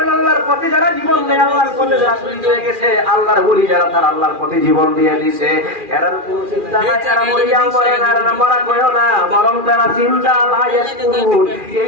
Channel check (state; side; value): late; left; 2.4 ms